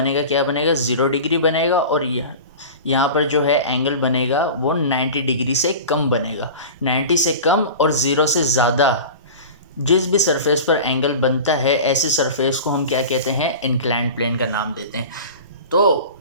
क्या बनेगा? 0 डिग्री बनेगा, और यहाँ पर जो है एंगल बनेगा वो 90 डिग्री से कम बनेगा। 90 से कम और 0 से ज़्यादा जिस भी सरफेस पर एंगल बनता है, ऐसे सरफेस को हम क्या कहते हैं? इंक्लाइंड प्लेन का नाम देते हैं। तो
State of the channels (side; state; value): both; inverted; correlation -0.33